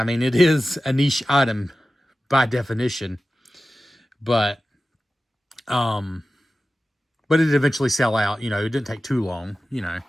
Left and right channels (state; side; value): normal; both; correlation 0.95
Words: mean, it is a niche item by definition. But it did eventually sell out. You know, it didn't take too long, you know.